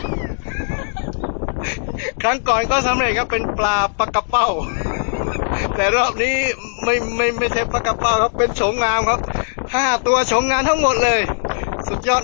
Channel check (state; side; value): silent; right; digital silence